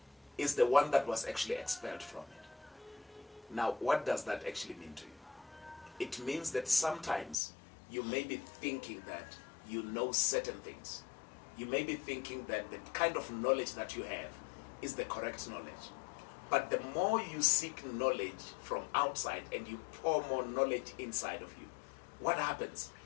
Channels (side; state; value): right; drops out; at 7.4 s